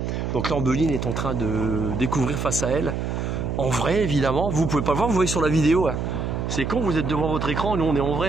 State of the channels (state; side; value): noise; right; hum, 2 dB below the sound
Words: Donc là, Ombeline est en train de découvrir face à elle. En vrai, évidemment. Vous pouvez pas le voir, vous voyez sur la vidéo. Hein. C'est con, vous êtes devant votre écran, nous on est en